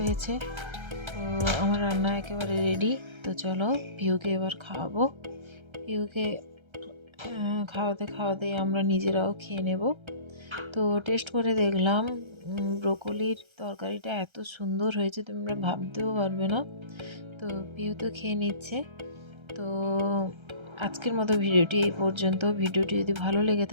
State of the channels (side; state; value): left; late; 1.3 ms